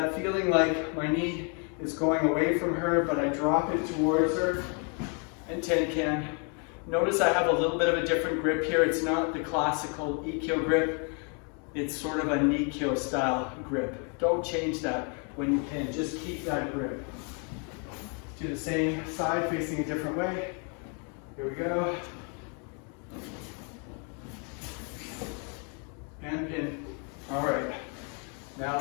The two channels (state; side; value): quieter; right; 37.8 dB